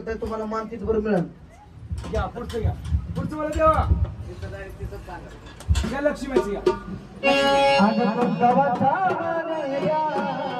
नाही, तुम्हाला मान तिथभर मिळेल. घ्या पुढचं घ्या, पुढचं मला देवा. घ्या लक्ष्मीचं घ्या. अगं तुमचा वाचा या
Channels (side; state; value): both; identical; correlation 1.00